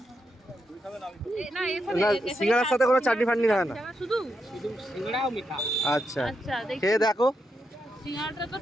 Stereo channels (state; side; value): normal; both; correlation 0.83